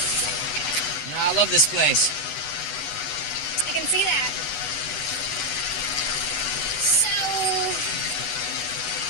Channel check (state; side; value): late; right; 13 ms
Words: You know, I love this place. I can see that. So,